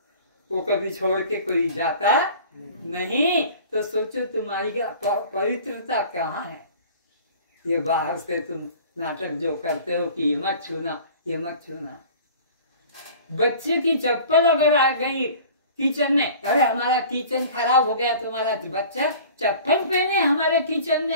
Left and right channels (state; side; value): inverted; both; correlation -0.44